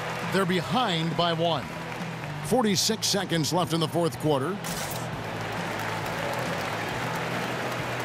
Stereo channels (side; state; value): both; identical; correlation 1.00